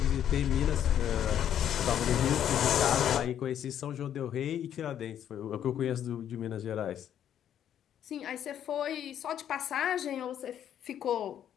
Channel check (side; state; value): right; quieter; 10.0 dB